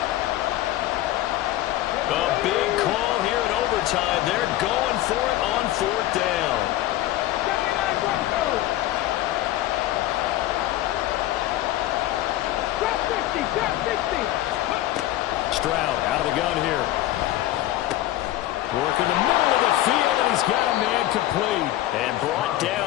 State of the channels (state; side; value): quieter; right; 14.7 dB